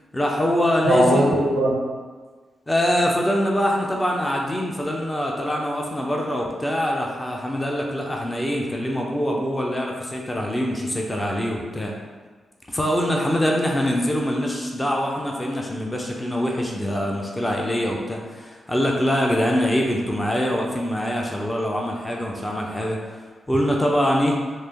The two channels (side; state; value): both; normal; correlation 0.89